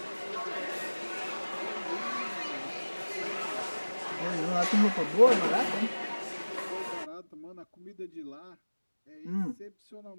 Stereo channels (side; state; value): both; inverted; correlation -1.00